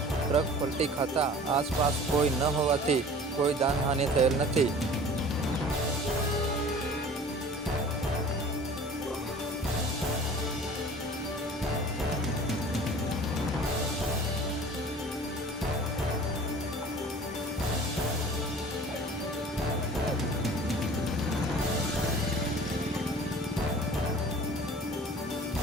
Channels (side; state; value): both; normal; correlation 0.45